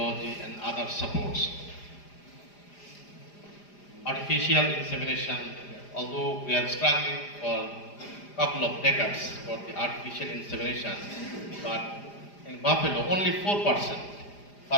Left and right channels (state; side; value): late; right; 4.9 ms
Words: and other supports. Artificial insemination, although we are struggling for a couple of decades for the artificial insemination, but in buffalo only 4%